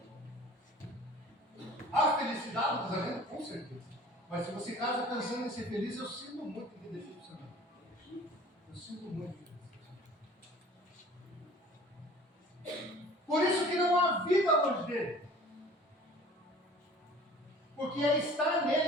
Há felicidade no casamento? Com certeza. Mas se você casa pensando em ser feliz, eu sinto muito que decepcionar. Eu sinto muito que decepcionar. Por isso que não há vida longe dele. Porque é estar nele,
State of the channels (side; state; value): both; normal; correlation 0.47